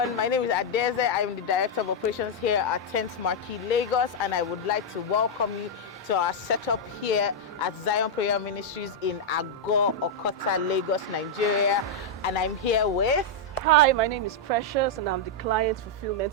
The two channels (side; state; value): both; normal; correlation -0.04